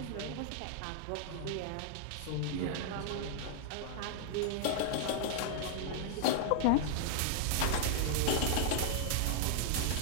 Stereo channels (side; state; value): both; different; correlation 0.00